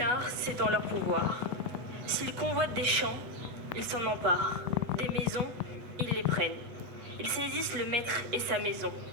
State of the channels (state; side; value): late; left; 8.0 ms